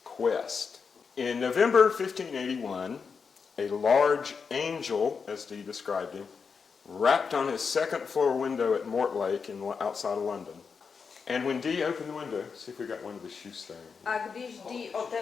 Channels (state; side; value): quieter; right; 5.6 dB